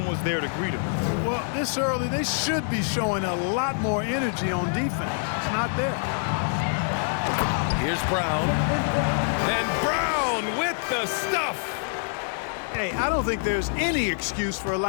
was there to greet him. Well, this early, they should be showing a lot more energy on defense. It's not there. Here's Brown. And Brown with the stuff. Hey, I don't think there's any excuse for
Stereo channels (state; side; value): silent; right; digital silence